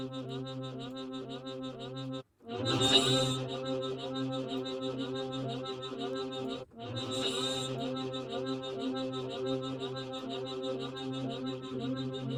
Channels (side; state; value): both; identical; correlation 1.00